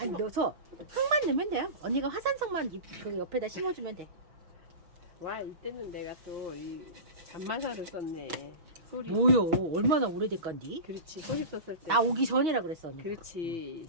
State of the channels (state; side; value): late; left; 6.0 ms